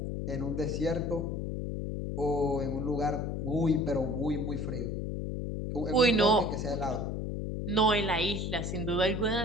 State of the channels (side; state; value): left; noise; hum, 3 dB below the sound